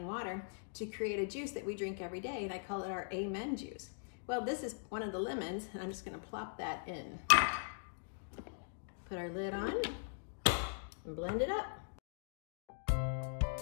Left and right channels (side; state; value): right; silent; digital silence